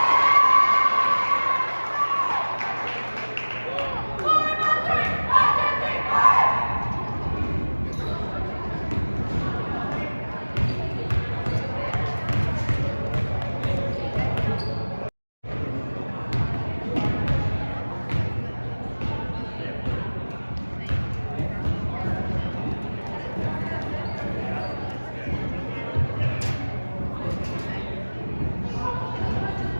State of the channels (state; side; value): inverted; both; correlation -1.00